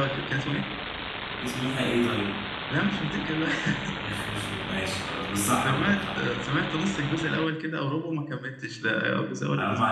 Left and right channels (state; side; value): identical; both; correlation 1.00